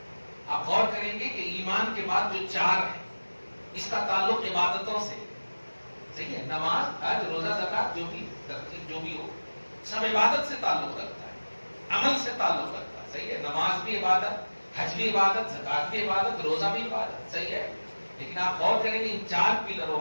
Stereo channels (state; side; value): inverted; both; correlation -1.00